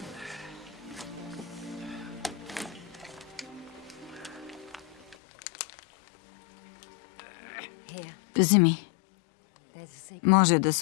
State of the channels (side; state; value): right; drops out; at 5.2 s